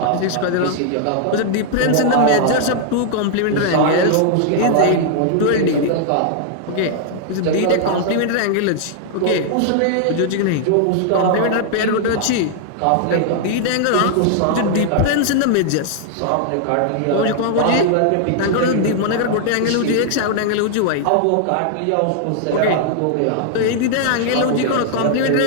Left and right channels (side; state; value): both; different; correlation -0.01